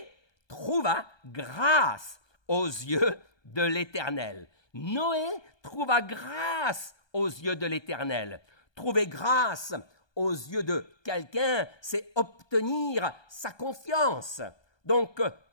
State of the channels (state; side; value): late; right; 1.2 ms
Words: trouva grâce aux yeux de l'Éternel. Noé trouva grâce aux yeux de l'Éternel. Trouver grâce aux yeux de quelqu'un, c'est obtenir sa confiance. Donc,